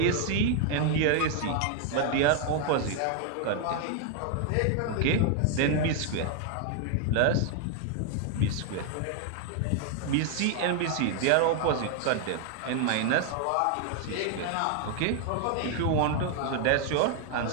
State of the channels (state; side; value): different; both; correlation 0.00